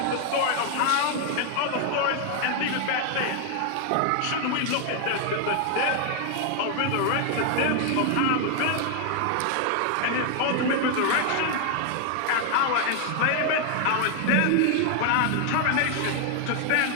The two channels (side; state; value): both; different; correlation 0.00